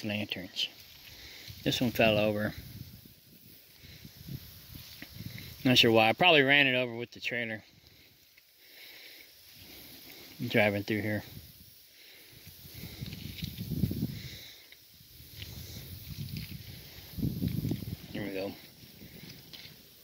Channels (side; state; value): both; identical; correlation 1.00